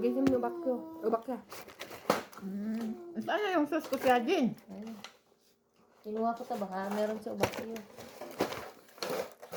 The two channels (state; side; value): identical; both; correlation 1.00